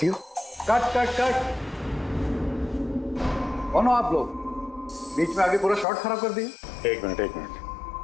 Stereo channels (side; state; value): right; drops out; at 5.9 s